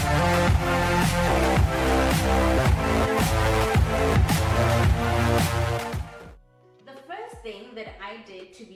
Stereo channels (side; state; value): both; identical; correlation 1.00